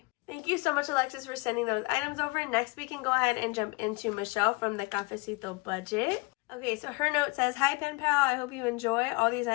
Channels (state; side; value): quieter; right; 25.9 dB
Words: Thank you so much, Alexis, for sending those items over. Next, we can go ahead and jump into Michelle from the Cafecito Budget. Okay, so her note says, hi, Pen Pal. I hope you enjoy. All these